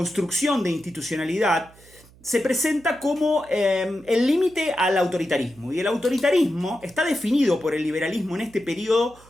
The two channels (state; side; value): noise; right; hum, 26 dB below the sound